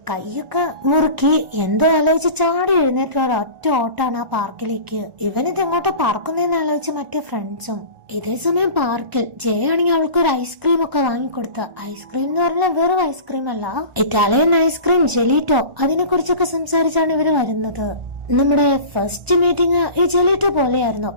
കൈയൊക്കെ മുറുക്കി എന്തോ ആലോചിച്ച് ചാടി എഴുന്നേറ്റ ഒറ്റ ഓട്ടാണ് ആ പാർക്കിലേക്ക്. ഇവനിത് എങ്ങോട്ട് പറക്കുന്നതെന്ന് ആലോചിച്ച് മറ്റേ ഫ്രണ്ട്സും. ഇതേ സമയം പാർക്കിൽ ജയാണെങ്കിൽ അവൾക്ക് ഒരു ഐസ്ക്രീം ഒക്കെ വാങ്ങിക്കൊടുത്ത. ഐസ്ക്രീം എന്ന് പറഞ്ഞാൽ വെറും ഐസ്ക്രീം അല്ല, ഇറ്റാലിയൻ ഐസ്ക്രീം ജെലീറ്റോ. അതിനെ കുറിച്ചൊക്കെ സംസാരിച്ചാണ് ഇവര് വരുന്നത്. നമ്മുടെ ഫസ്റ്റ് മീറ്റിംഗ് ഈ ജെലീറ്റോ പോലെയായിരുന്നു,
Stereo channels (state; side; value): late; left; 1.4 ms